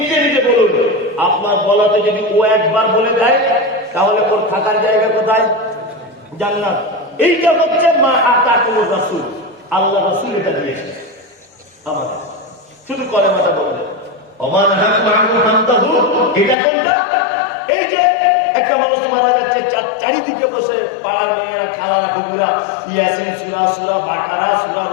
নিজে বলুন। আপনার বলাতে যদি ও একবার বলে দেয় তাহলে ওর থাকার জায়গা কোথায়? জান্নাত। এইটা হচ্ছে মা আতাকুমুর রাসূল, আল্লাহ রাসূল এটা দিয়েছে আমাদের। শুধু কলেমাটা বলবেন ওমান হাকুম আনহু ফান্তাহু, এটা কোনটা? এই যে একটা মানুষ মারা যাচ্ছে, চারিদিকে বসে পাড়ার মেয়েরা খালারা কুকুরা ইয়াসিন সূরা, সূরা বাকারা, সূরা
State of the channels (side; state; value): right; drops out; at 16.6 s